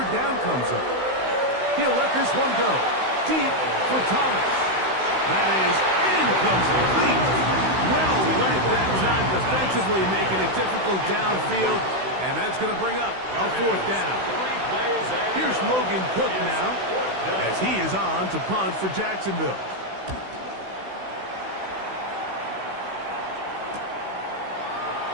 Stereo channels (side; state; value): left; late; 16 ms